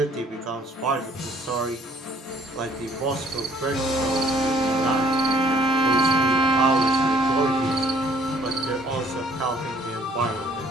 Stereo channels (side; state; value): both; normal; correlation 0.60